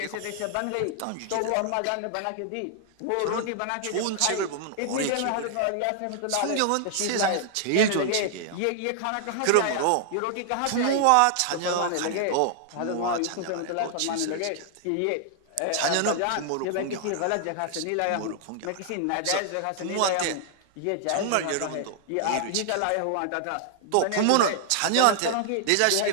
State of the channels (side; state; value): both; different; correlation 0.00